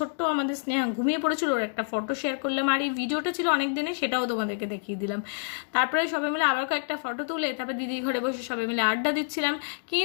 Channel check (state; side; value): silent; right; digital silence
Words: আমাদের স্নেহা ঘুমিয়ে পড়েছিল, ওর একটা ফটো শেয়ার করলাম। আর এই ভিডিওটা ছিল অনেক দিনে, সেটাও তোমাদেরকে দেখিয়ে দিলাম। তারপরে সবাই মিলে আবার কয়েকটা ফটো তুলে তারপরে দিদির ঘরে বসে সবাই মিলে আড্ডা দিচ্ছিলাম।